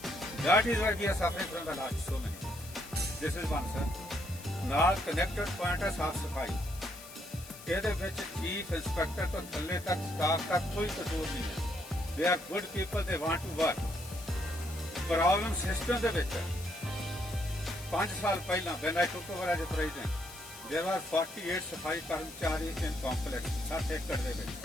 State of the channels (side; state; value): left; noise; hiss, 16 dB below the sound